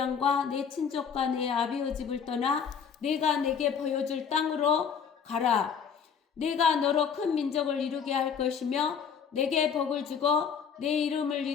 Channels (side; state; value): right; quieter; 6.9 dB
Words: 내 친족과 내 아비의 집을 떠나 내가 내게 보여줄 땅으로 가라. 내가 너로 큰 민족을 이루게 할 것이며 내게 복을 주고 내 이름을